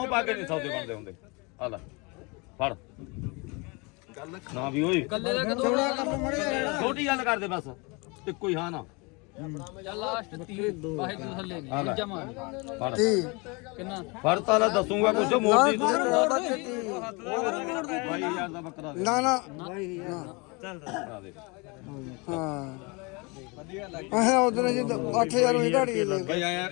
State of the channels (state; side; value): quieter; right; 28.8 dB